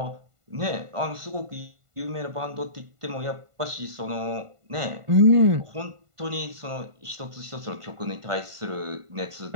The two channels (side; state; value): left; late; 1.5 ms